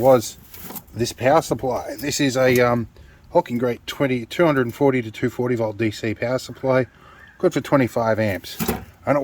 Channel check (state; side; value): identical; both; correlation 1.00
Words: this power supply. This is a Hawking Great 240 to 240 volt DC power supply, good for 25 amps, and it